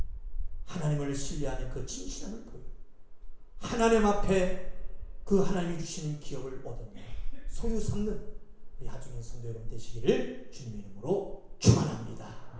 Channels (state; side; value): identical; both; correlation 1.00